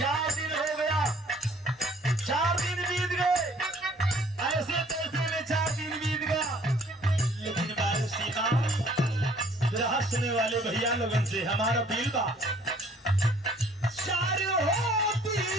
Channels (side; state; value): both; normal; correlation 0.57